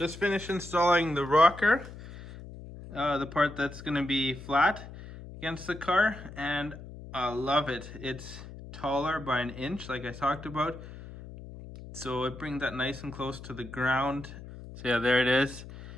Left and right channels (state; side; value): noise; left; hum, 14 dB below the sound